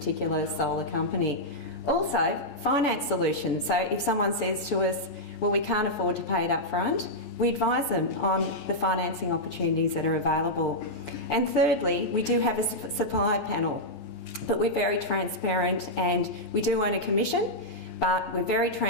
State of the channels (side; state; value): right; late; 14 ms